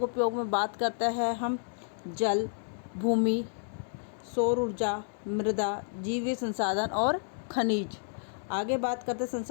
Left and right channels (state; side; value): silent; right; digital silence